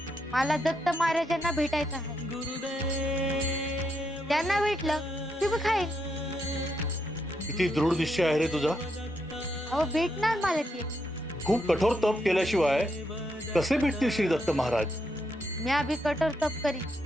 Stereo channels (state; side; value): normal; both; correlation 0.80